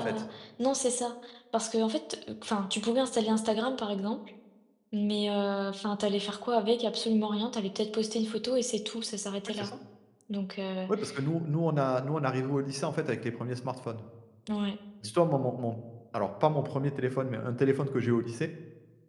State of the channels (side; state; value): both; identical; correlation 1.00